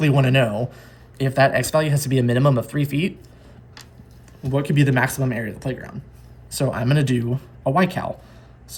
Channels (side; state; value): both; identical; correlation 1.00